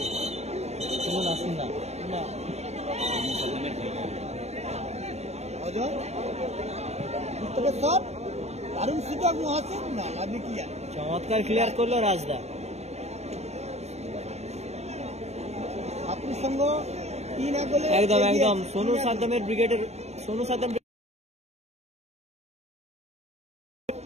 নাসির না চমৎকার ক্লিয়ার করলো রাজদা। একদম একদম সোনু সাদ্দামের ব্রিগেডের সোনু সাদ্দাম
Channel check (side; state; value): left; late; 0.32 ms